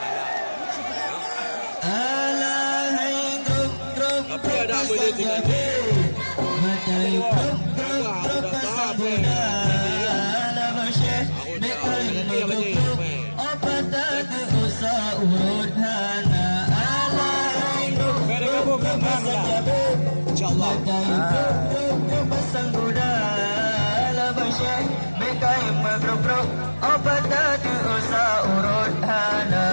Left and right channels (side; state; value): both; inverted; correlation -1.00